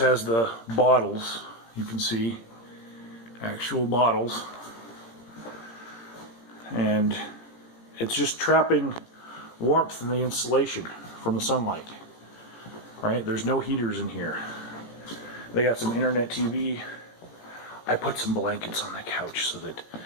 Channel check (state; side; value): late; right; 17 ms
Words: the bottles. You can see actual bottles, and it's just trapping warmth in the insulation from the sunlight, right? There's no heaters in here. They got some internet TV. I put some blankets on the couch so that